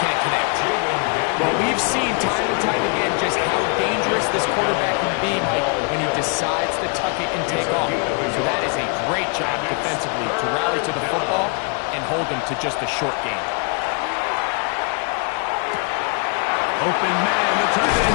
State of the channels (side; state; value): right; quieter; 36.5 dB